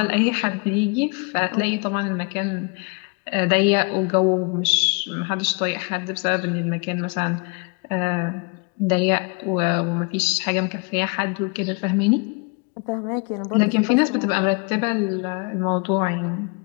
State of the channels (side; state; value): right; quieter; 32.1 dB